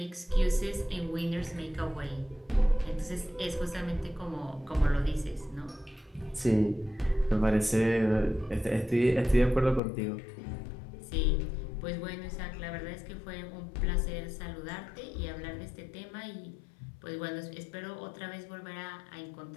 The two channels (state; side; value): drops out; right; at 9.8 s